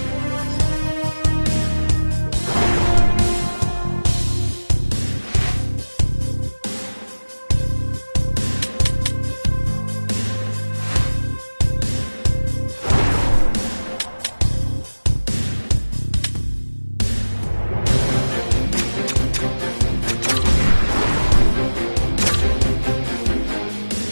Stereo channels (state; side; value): inverted; both; correlation -1.00